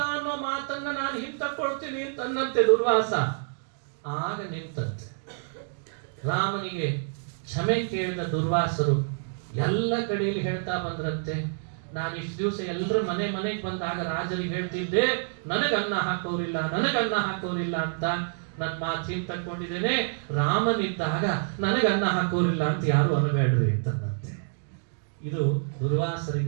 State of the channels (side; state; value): left; silent; digital silence